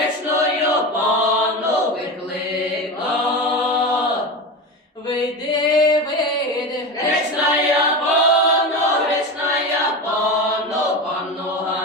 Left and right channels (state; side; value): normal; both; correlation 0.23